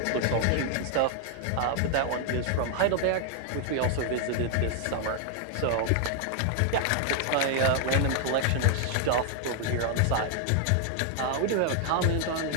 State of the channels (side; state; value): both; different; correlation 0.00